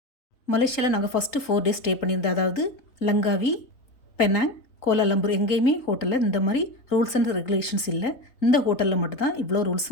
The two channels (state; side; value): late; right; 3.8 ms